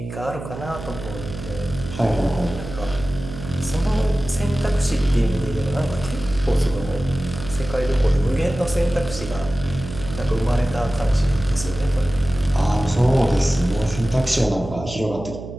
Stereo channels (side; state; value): right; noise; hum, 10 dB below the sound